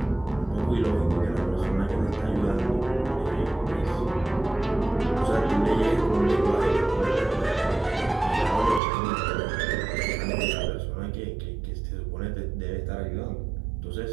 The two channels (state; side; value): drops out; left; at 8.8 s